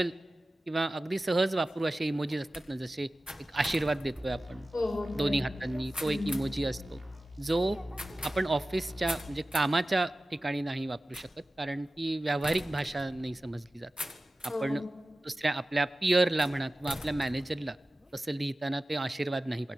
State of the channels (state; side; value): normal; both; correlation 0.96